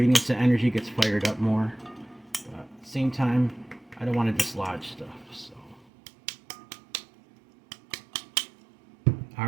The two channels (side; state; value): left; drops out; at 5.9 s